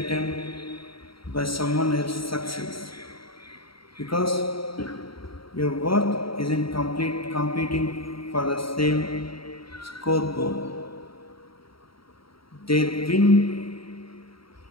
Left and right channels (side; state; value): right; late; 0.74 ms